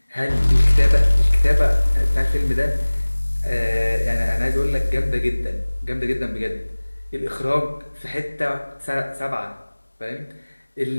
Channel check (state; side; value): inverted; both; correlation -1.00